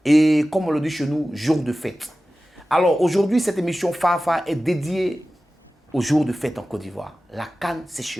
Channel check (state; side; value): normal; both; correlation 0.95